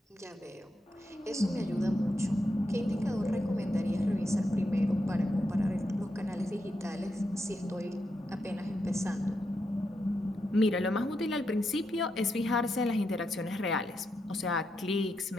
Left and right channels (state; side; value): normal; both; correlation 0.84